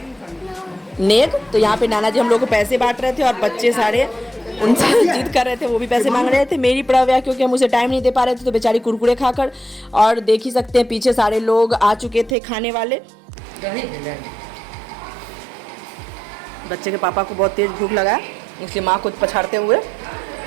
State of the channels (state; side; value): drops out; left; at 12.4 s